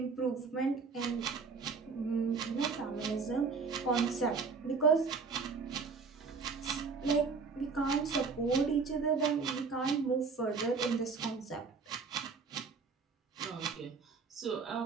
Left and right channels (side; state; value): left; quieter; 4.9 dB